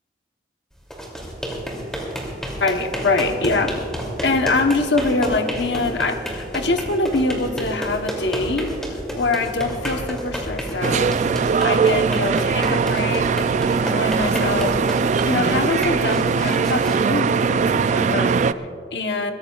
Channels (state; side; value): normal; both; correlation 0.24